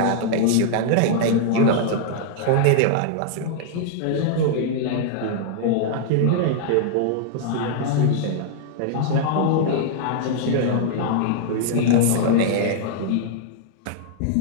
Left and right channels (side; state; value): both; different; correlation -0.01